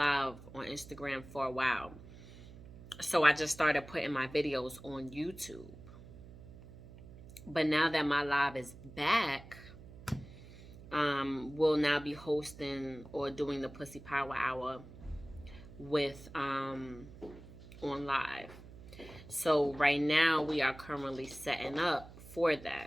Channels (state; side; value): noise; right; hum, 17 dB below the sound